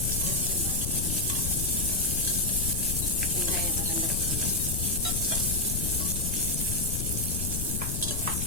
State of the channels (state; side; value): noise; left; rumble, 2 dB below the sound